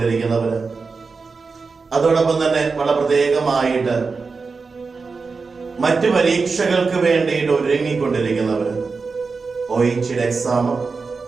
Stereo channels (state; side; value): quieter; left; 4.6 dB